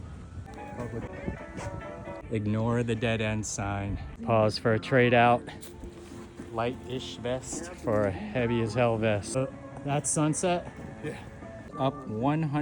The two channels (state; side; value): identical; both; correlation 1.00